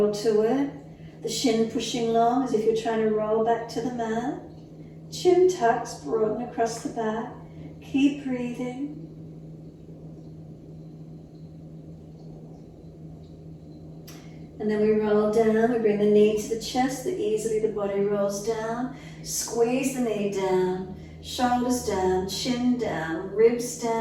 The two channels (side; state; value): both; identical; correlation 1.00